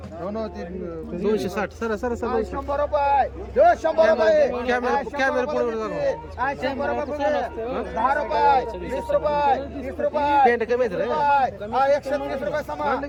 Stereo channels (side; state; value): both; identical; correlation 1.00